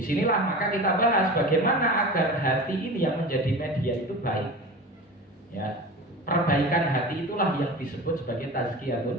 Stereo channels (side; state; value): both; normal; correlation 0.33